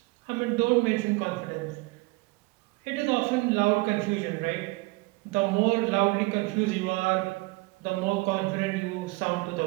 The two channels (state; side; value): quieter; left; 23.8 dB